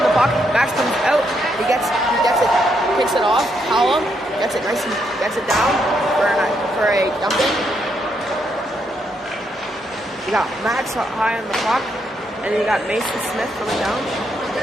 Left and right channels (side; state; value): both; normal; correlation 0.77